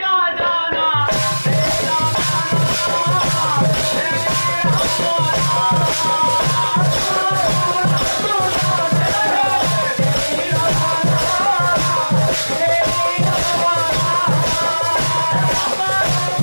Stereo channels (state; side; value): inverted; both; correlation -1.00